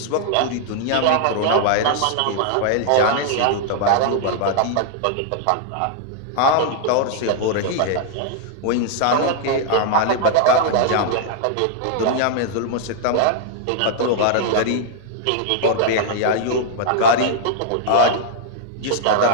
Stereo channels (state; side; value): different; both; correlation 0.00